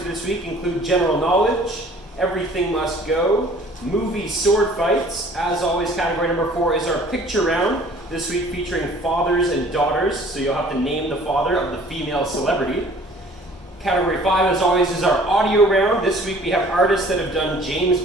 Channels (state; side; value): normal; both; correlation 0.52